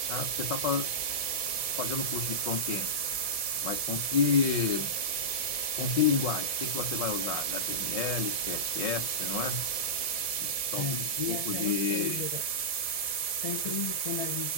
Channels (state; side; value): late; right; 1.7 ms